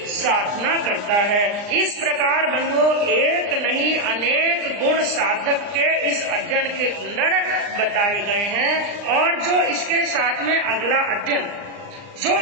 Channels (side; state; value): left; late; 39 ms